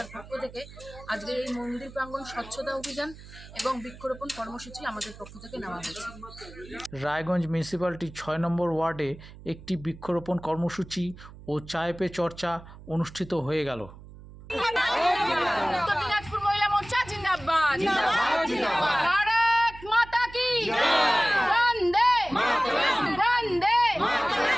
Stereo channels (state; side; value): noise; right; hum, 18 dB below the sound